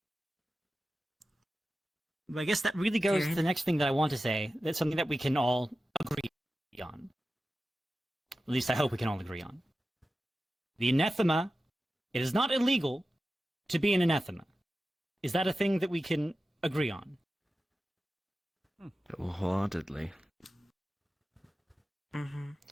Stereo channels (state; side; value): normal; both; correlation 0.93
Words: I guess that really goes to the next thing that I want to say. That's something that we can all agree on. At least I hope we can all agree on. The anathema, it is not illegal to be an anathema. Is that a thing that we can agree on? Wholeheartedly.